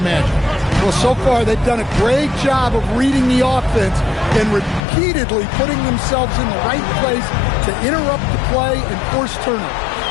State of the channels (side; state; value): right; drops out; at 4.8 s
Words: Well, so far they've done a great job of reading the offense and repeatedly putting themselves in the right place to interrupt the play and force turnovers.